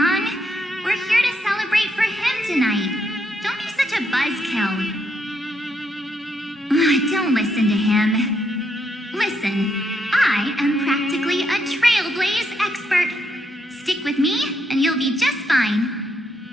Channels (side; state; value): both; normal; correlation 0.77